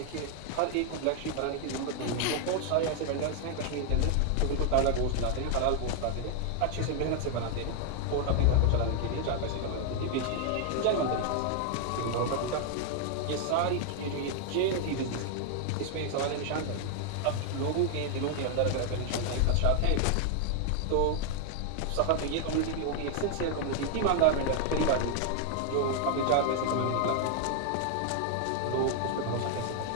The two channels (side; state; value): both; different; correlation 0.00